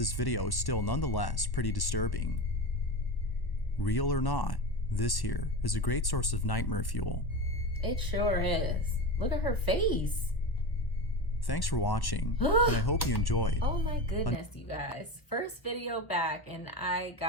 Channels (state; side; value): late; right; 1.1 ms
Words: video is still nonetheless pretty disturbing. Real or not, this here is a great source of nightmare fuel. It sure is. Look at her face. Thanks for watching, and I hope you enjoyed. Oh my goodness, you guys. First video back and I